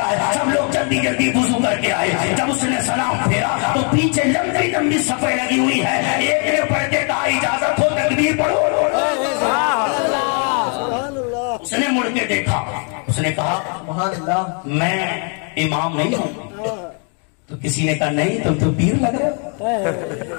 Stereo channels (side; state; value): right; quieter; 39.4 dB